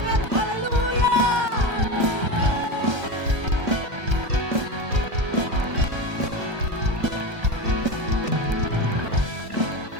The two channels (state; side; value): late; left; 1.3 ms